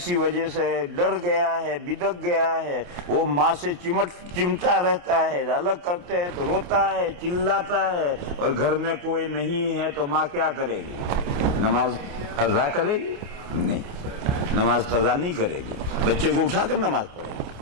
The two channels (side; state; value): left; late; 28 ms